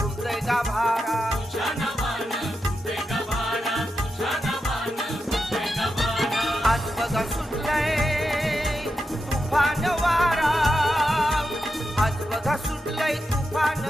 गाभारा आज बघा सुटलंय तुफान वारा आज बघा सुटलंय तुफान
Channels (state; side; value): normal; both; correlation 0.88